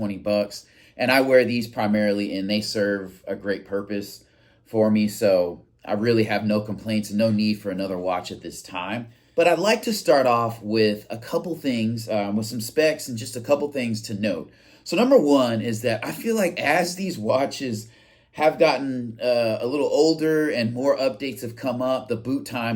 bucks. And I wear these primarily and they serve a great purpose for me. So I really have no complaints and no need for another watch at this time. But I'd like to start off with a couple things, with some specs and just a couple things to note. So number one is that I feel like as these watches have gotten a little older and more updates have come up, the boot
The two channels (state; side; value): identical; both; correlation 1.00